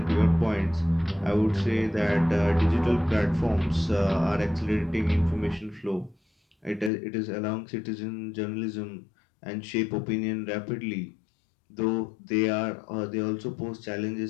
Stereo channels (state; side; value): drops out; right; at 6.9 s